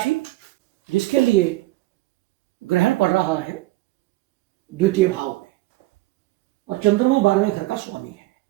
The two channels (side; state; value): left; quieter; 18.9 dB